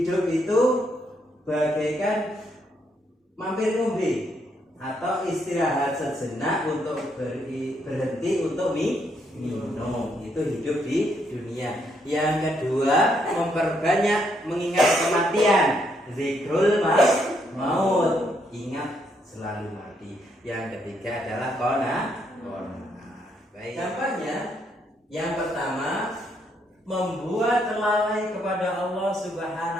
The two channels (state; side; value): normal; both; correlation 0.75